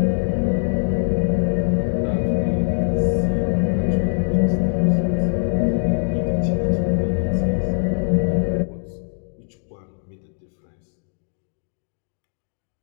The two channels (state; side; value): silent; right; digital silence